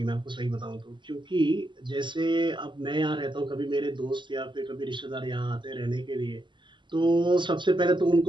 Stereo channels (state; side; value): late; left; 0.23 ms